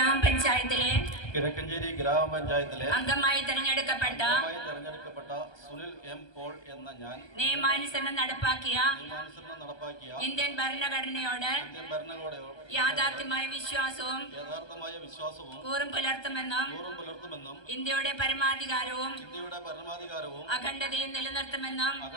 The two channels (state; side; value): late; right; 1.3 ms